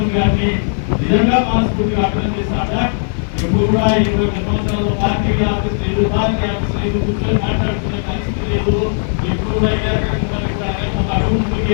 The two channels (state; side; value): silent; right; digital silence